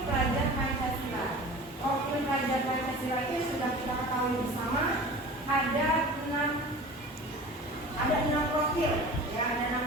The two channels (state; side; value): normal; both; correlation 0.39